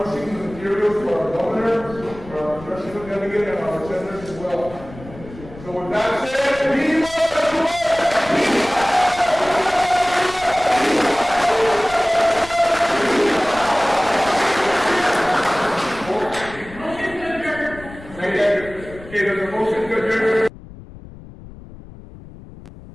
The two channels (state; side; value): noise; left; rumble, 17 dB below the sound